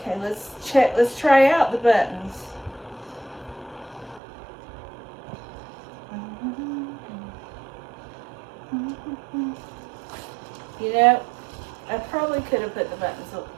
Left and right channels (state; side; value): drops out; left; at 4.2 s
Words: let's check. Let's try out the buttons. You know, I probably could have put the buttons,